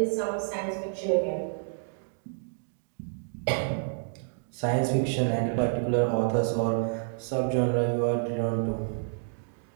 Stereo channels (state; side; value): silent; left; digital silence